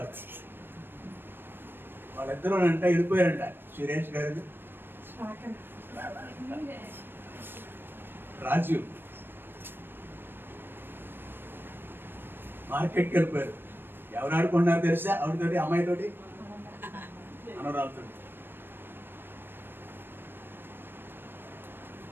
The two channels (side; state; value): left; late; 0.098 ms